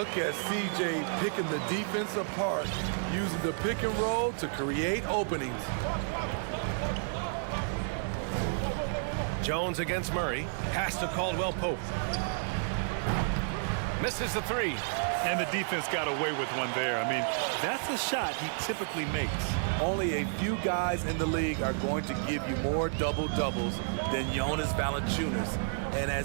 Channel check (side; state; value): left; silent; 57 dB below the other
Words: at CJ picking the defense apart, using the pick and roll to create openings. Jones against Murray. Pass to Caldwell Pope. Misses the 3. And the defense got away with one there. I mean, that's a shot he typically makes. Only a few guys in the league are going to give you more double-doubles than Jonas Valanciunas. And